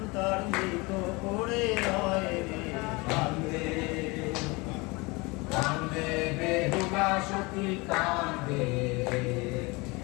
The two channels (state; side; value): quieter; right; 25.6 dB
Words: তার মৃত করে রয় রে কান্দে। কান্দে বেহুলা সখী কান্দে,